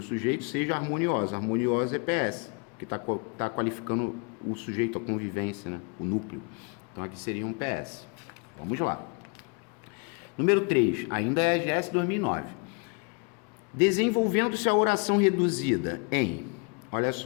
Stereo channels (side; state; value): right; quieter; 34.8 dB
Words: sujeito, seja harmoniosa. Harmoniosa é PS, que tá qualificando o sujeito, a convivência, né? O núcleo. Então aqui seria um PS. Vamos lá. Número 3, ainda é a GS 2009. Desenvolvendo-se a oração reduzida em, olha